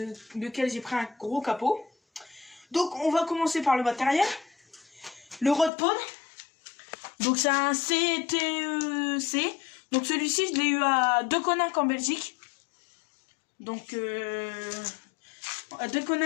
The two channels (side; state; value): right; drops out; at 5.7 s